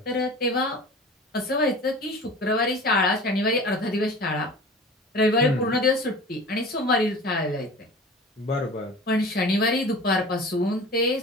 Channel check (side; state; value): both; normal; correlation 0.38